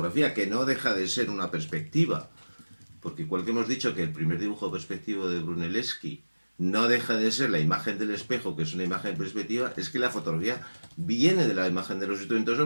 que no deja de ser una perspectiva, porque igual que hemos dicho que el primer dibujo perspectivo de Brunelleschi no deja de ser la imagen del espejo, que es una imagen perspectiva, es que la fotografía viene de la imagen de los instrumentos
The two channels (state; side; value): inverted; both; correlation -1.00